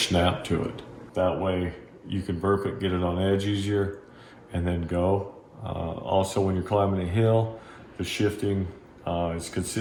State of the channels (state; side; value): identical; both; correlation 1.00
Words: to it. That way you can burp it, get it on edge easier, and then go. Also, when you're climbing a hill, the shifting is